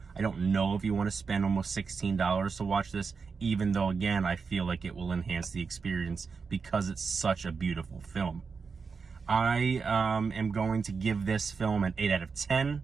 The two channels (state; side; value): quieter; left; 5.2 dB